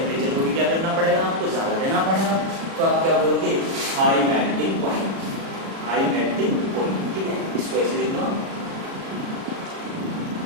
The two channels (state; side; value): late; left; 36 ms